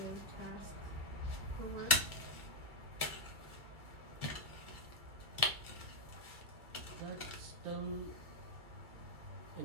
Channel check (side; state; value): left; late; 2.3 ms